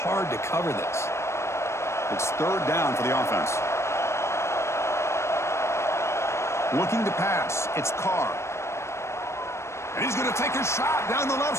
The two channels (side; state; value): right; late; 0.13 ms